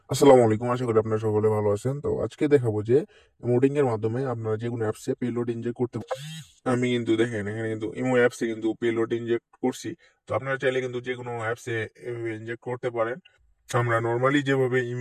আসসালামু আলাইকুম, আশা করি আপনারা সকলে ভালো আছেন। তো আজকে দেখাবো যে ইমোটিং এর মাধ্যমে আপনারা যে কোনো অ্যাপসে পেলোড ইনজেক্ট করতে পারেন। আমি কিন্তু দেখেন এখানে কিন্তু ইমো অ্যাপসে কিন্তু পেলোড ইনজেক্ট করছি। তো আপনারা চাইলে কিন্তু যে কোনো অ্যাপসে ইনজেক্ট করতে পারেন। আমরা নর্মালি যেভাবে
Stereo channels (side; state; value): both; identical; correlation 1.00